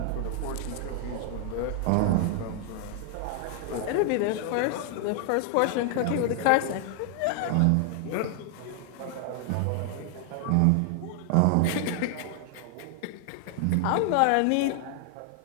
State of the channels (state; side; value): different; both; correlation 0.00